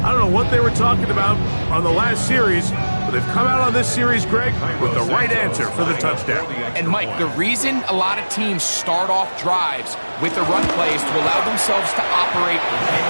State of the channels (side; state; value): both; inverted; correlation -1.00